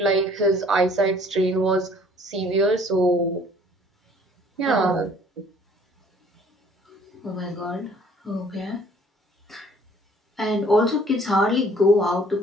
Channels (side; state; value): both; normal; correlation 0.56